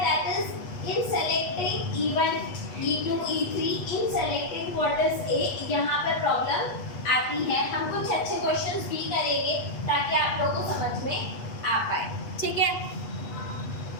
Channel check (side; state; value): right; late; 8.3 ms